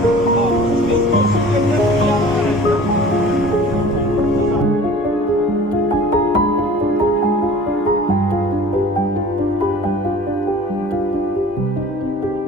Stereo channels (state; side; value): normal; both; correlation 0.46